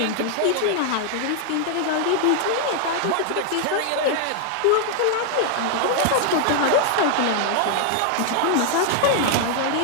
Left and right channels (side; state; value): both; different; correlation 0.00